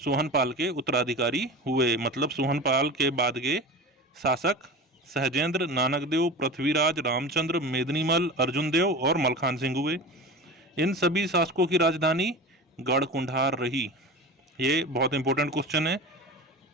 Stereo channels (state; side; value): normal; both; correlation 0.31